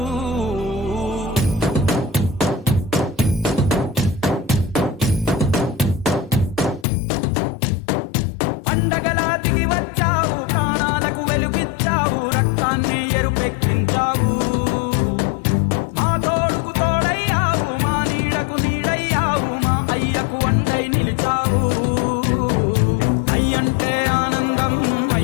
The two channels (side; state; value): right; drops out; at 6.9 s